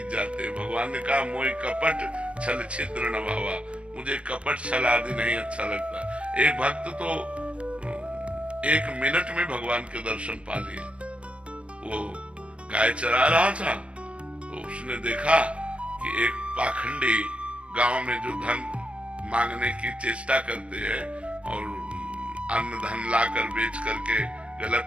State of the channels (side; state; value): left; late; 0.060 ms